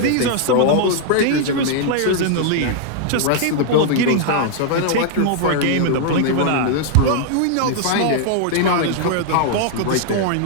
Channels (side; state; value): both; different; correlation -0.01